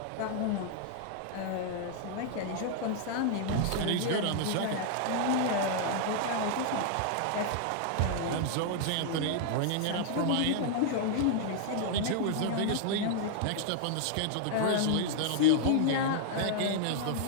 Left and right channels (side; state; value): both; different; correlation -0.01